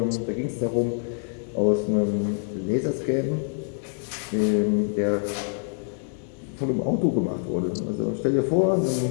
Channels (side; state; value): right; silent; 58 dB below the other